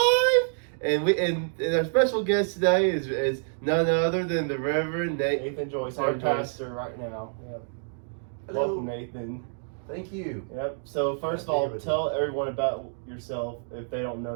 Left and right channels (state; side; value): silent; left; digital silence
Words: And our special guest today is none other than the Reverend Nathan Joyce, our pastor right now. Yep. Hello. Welcome, Nathan. Thank you. Yep. So first of all, tell everyone about yourself if they don't know